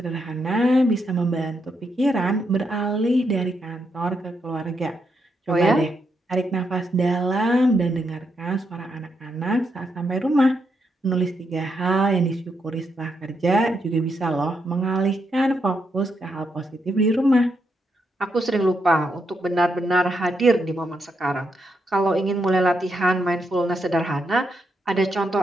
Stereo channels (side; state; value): both; normal; correlation 0.81